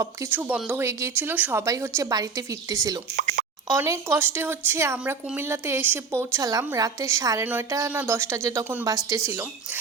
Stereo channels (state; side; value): quieter; left; 5.1 dB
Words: কিছু বন্ধ হয়ে গিয়েছিল, সবাই হচ্ছে বাড়িতে ফিরতেছিল। অনেক কষ্টে হচ্ছে আমরা কুমিল্লাতে এসে পৌঁছালাম রাতে 9:30 না 10টা যে তখন বাজতেছিল।